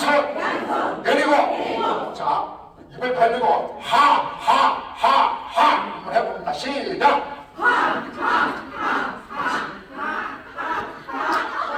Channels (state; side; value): identical; both; correlation 1.00